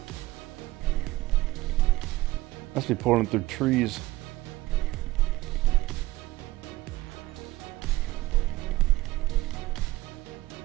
Must be pulling through trees.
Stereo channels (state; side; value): quieter; left; 18.3 dB